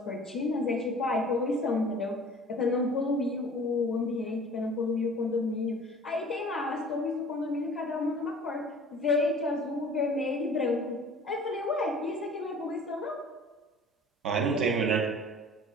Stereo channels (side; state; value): both; normal; correlation 0.46